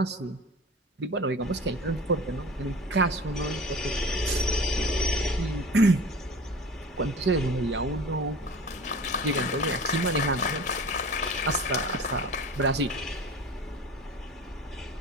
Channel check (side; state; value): both; normal; correlation 0.38